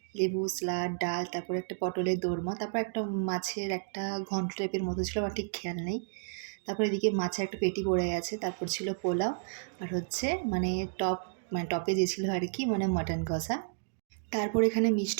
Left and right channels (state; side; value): silent; left; digital silence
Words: লেবু, স্যালাড, ডাল, তারপরে একটা পটলের দোরমা, তারপর একটা মাছের একটা ঘন্ট টাইপের মতো ছিল, আমার ঠিক খেয়াল নেই। তারপর এদিকে মাছের একটা পেটি পড়ে গেছে, তারপর ছিল পোলাও আর হচ্ছে টপ টপে যে ছিল আর কি মাটন কষা। তারপর এখানে